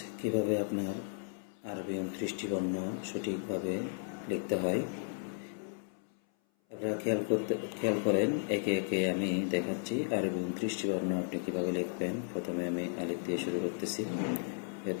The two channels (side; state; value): right; silent; 55 dB below the other